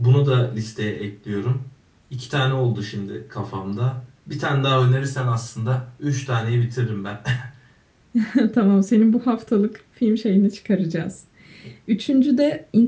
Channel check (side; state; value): both; identical; correlation 1.00